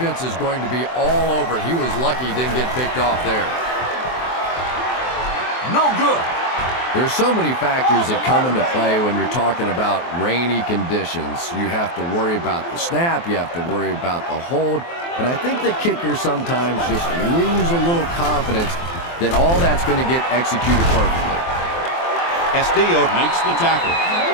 is going to be all over it. He was lucky he didn't get picked off there. No good. There's so many factors that come into play when you're talking about rainy conditions. You have to worry about the snap. You have to worry about the hold. And I think the kickers sometimes just lose a little confidence that all that's going to get executed perfectly. Castillo makes the tackle.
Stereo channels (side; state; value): right; late; 23 ms